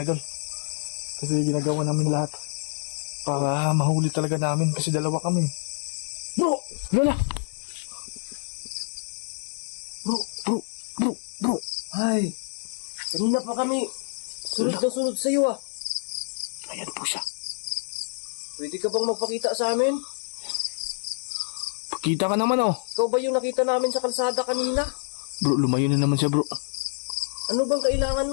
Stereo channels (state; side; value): silent; right; digital silence